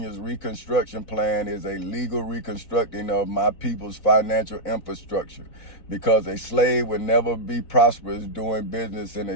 Reconstruction Plan is a legal reconstructing of my people's financial infrastructure, because a slave would never be prosperous doing business in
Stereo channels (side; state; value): right; late; 4.1 ms